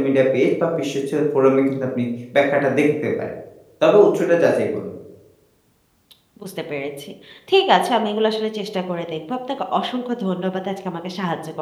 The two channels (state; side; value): identical; both; correlation 1.00